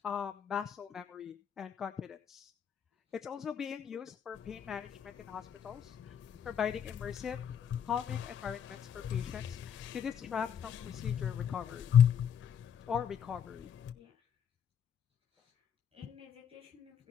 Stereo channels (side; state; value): right; quieter; 8.3 dB